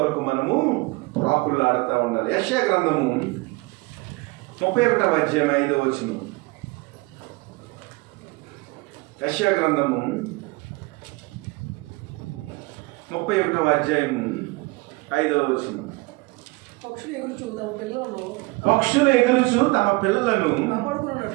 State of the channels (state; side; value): quieter; left; 24.3 dB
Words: మనము ప్రాకులాడుతూ ఉండాలి. యెషయా గ్రంథము 31వ అధ్యాయం 5వ వచనం. యెషయా గ్రంథము 31వ అధ్యాయం 5వ వచనం. పక్షులు ఎగురుచు తమ పిల్లలను